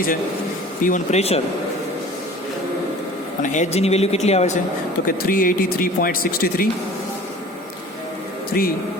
છે? P1 પ્રેશર અને Hgની વેલ્યુ કેટલી આવે છે તો કે 383.63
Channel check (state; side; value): normal; both; correlation 0.44